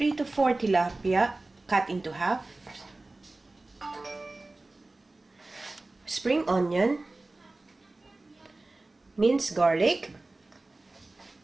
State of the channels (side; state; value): left; quieter; 3.0 dB